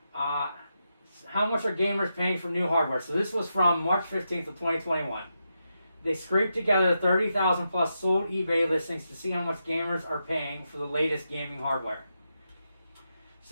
How much are gamers paying for new hardware? So this was from March 15th of 2021. They scraped together 30,000 plus sold eBay listings to see how much gamers are paying for the latest gaming hardware.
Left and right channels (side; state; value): both; inverted; correlation -0.86